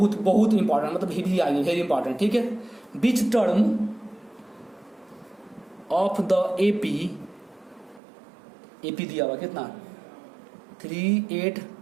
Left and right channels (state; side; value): drops out; left; at 8.0 s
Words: इंपॉर्टेंट, मतलब भी आएंगे, वेरी इंपॉर्टेंट। ठीक है, बीच टर्म ऑफ द एपी दिया हुआ कितना 3 8